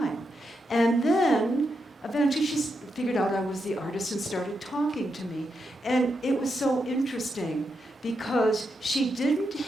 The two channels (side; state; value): both; normal; correlation 0.84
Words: And then, eventually, she figured out I was the artist and started talking to me. And it was so interesting because she didn't